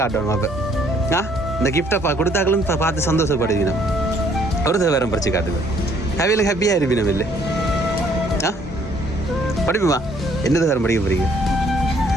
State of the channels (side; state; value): both; normal; correlation 0.63